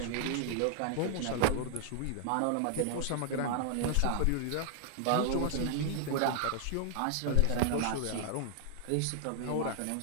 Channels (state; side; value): different; both; correlation 0.00